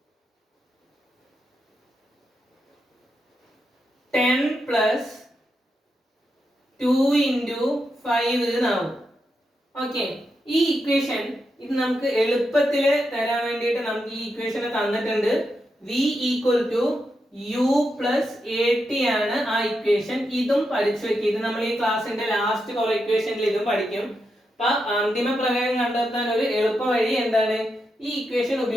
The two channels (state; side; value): normal; both; correlation 0.85